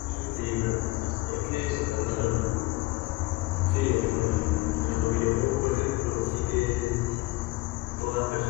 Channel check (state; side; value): quieter; right; 20.8 dB